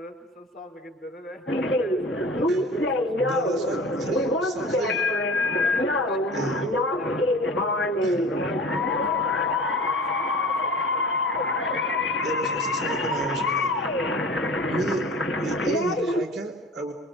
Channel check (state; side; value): normal; both; correlation 0.40